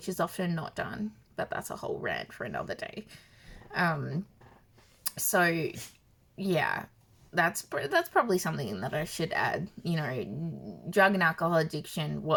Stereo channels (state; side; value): identical; both; correlation 1.00